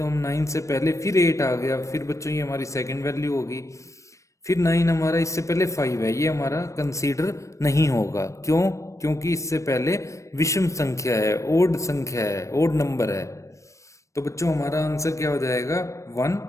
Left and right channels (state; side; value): late; right; 0.15 ms